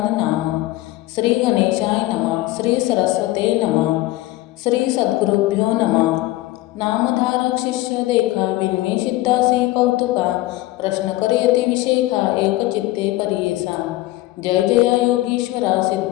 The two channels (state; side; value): quieter; right; 17.7 dB